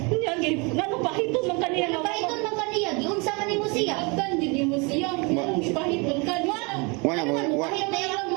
Ngano pahiton man kaniya? Pahiton man kaniya, giunsa man nimo siya? Agdan di mo siya. Pahiton kaniya. Wala na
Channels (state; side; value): quieter; left; 30.0 dB